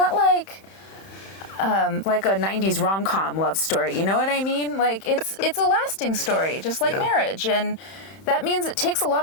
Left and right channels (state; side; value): late; right; 31 ms